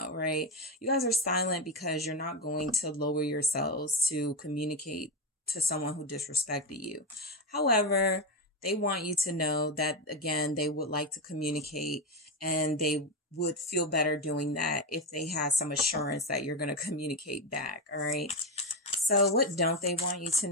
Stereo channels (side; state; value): both; normal; correlation 0.11